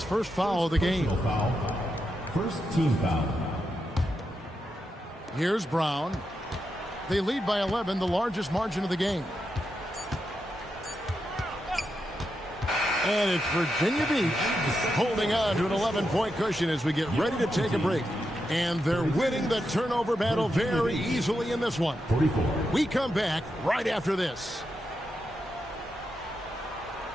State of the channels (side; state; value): both; normal; correlation 0.86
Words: first foul of the game. First team foul. Here's Brown. They lead by 11, the largest margin of the game. And it's Virginia Beach holding on to an 11-point cushion as we get ready to take a break. And they're winning the turnover battle very easily in this one. 44. We come back right after this.